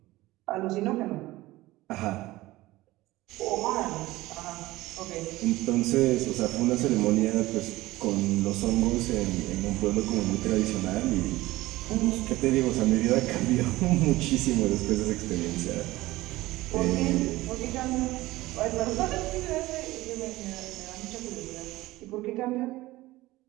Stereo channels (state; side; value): quieter; left; 18.4 dB